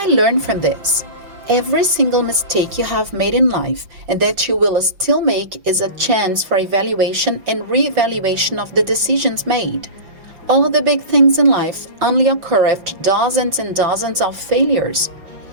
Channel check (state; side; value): late; left; 5.8 ms